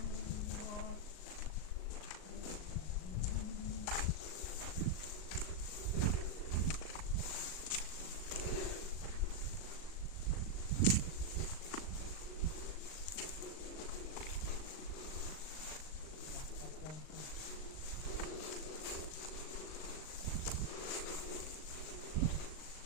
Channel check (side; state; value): right; late; 38 ms